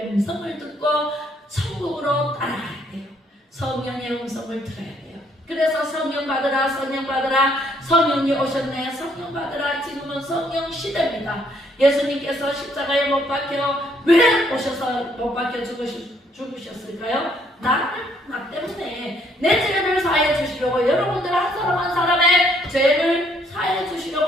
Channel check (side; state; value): both; normal; correlation 0.67